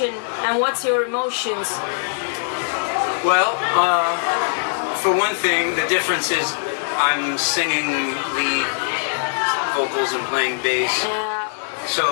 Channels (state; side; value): silent; right; digital silence